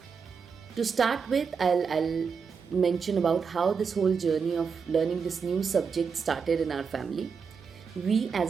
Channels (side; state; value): left; quieter; 5.9 dB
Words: To start with, I'll mention about how this whole journey of learning this new subject started in our family. We